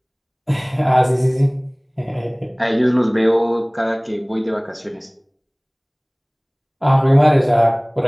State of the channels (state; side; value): identical; both; correlation 1.00